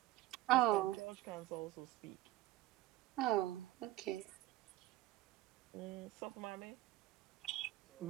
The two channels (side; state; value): left; quieter; 15.8 dB